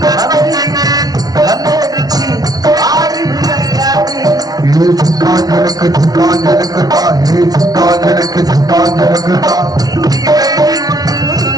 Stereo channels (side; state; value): left; late; 0.19 ms